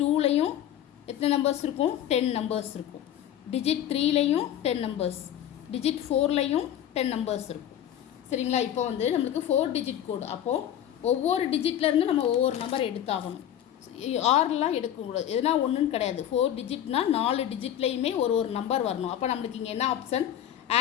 2லையும் எத்தனை நம்பர்ஸ் இருக்கும், 10 நம்பர்ஸ் இருக்கும். டிஜிட் 3லையும் 10 நம்பர்ஸ், டிஜிட் 4லையும் 10 நம்பர்ஸ் இருக்கும். சரிங்களா, இப்போ வந்து நம்மளுக்கு 4 டிஜிட் கோடு. அப்போது ஒவ்வொரு டிஜிட்லேருந்து நம்ம ஒவ்வொரு நம்பர் எடுத்தாகணும். ஆறுலாம் எடுக்கக்கூடாது, எதுனா ஒன்றுன்னு கிடையாது. 4 டிஜிட்னால் 4 டிஜிட்லேயுமே ஒரு நம்பர் வரணும். அப்போ நம்மளுக்கு இங்கே என்ன ஆப்ஷன்,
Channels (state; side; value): quieter; right; 10.9 dB